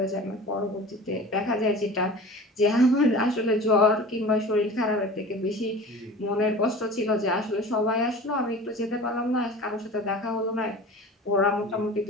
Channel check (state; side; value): normal; both; correlation 0.38